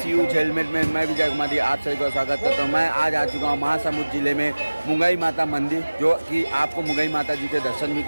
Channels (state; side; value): inverted; both; correlation -1.00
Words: यूज हेलमेट में। मैं विजय कुमार आप सभी का स्वागत करता हूँ। मैं आज आ चुका हूँ महासमुंद जिले में मुंगई माता मंदिर, जो कि आपको मुंगई माता जी के दर्शन भी